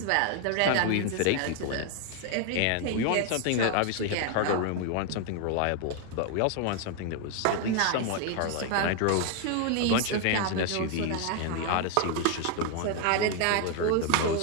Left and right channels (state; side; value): different; both; correlation 0.01